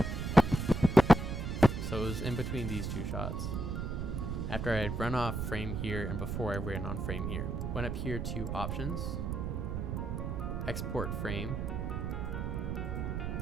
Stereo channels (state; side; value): noise; right; rumble, 2 dB below the sound